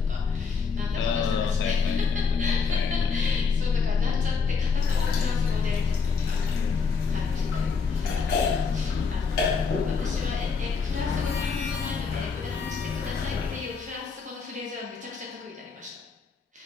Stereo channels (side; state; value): right; quieter; 5.2 dB